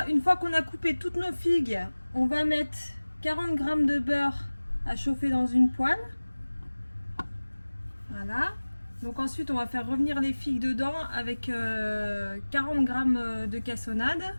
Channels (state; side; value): inverted; both; correlation -1.00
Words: une fois qu'on a coupé toutes nos figues, on va mettre 40 g de beurre à chauffer dans une poêle. Voilà, donc ensuite on va faire revenir les figues dedans avec 40 g de cassonade.